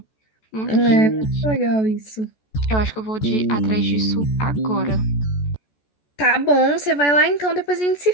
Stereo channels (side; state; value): right; late; 14 ms